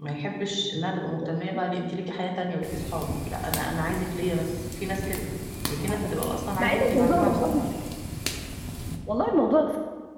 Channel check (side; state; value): both; identical; correlation 1.00